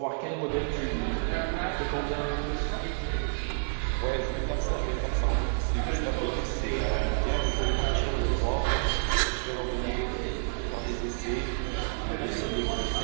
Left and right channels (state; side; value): silent; left; 58 dB below the other